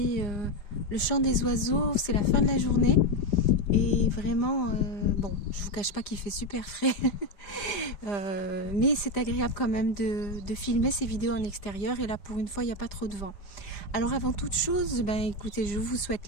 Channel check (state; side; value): late; right; 5.0 ms